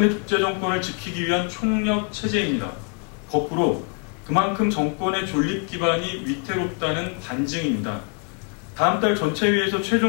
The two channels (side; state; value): right; quieter; 38.2 dB